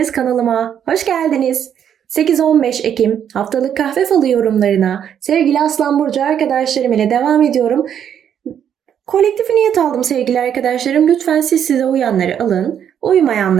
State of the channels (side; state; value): left; quieter; 9.0 dB